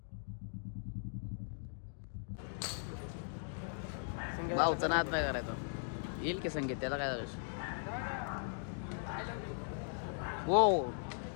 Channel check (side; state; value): right; silent; digital silence